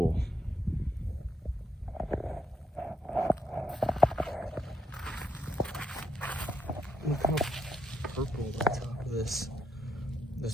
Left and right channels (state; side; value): normal; both; correlation 0.78